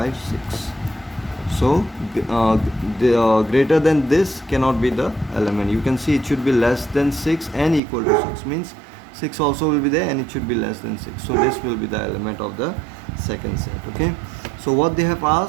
6. So greater than this cannot be the element. You can see it should be less than 6 and equal to 6, means 6 also will be there and it should be less than 6. So this will be the element of the second set. Okay, so what they have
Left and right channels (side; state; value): left; drops out; at 7.8 s